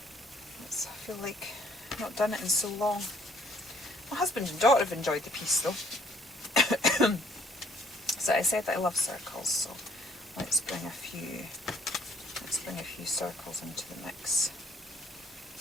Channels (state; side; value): normal; both; correlation 0.62